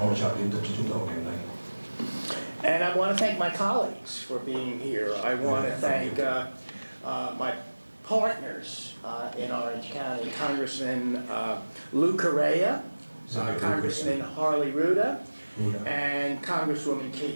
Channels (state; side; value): inverted; both; correlation -1.00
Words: trợ liên tục cho chúng tôi ngày hôm nay. And I want to thank my colleagues for being here. I want to thank my partners in Orange County, Congressman Lou Correa, Congressman Harley Ruda, and Congresswoman